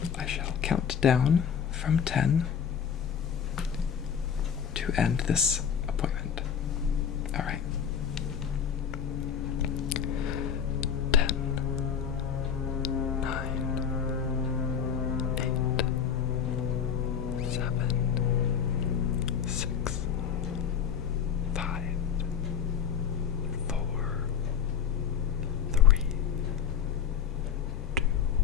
I shall count down from 10 to end this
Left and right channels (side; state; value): right; quieter; 7.7 dB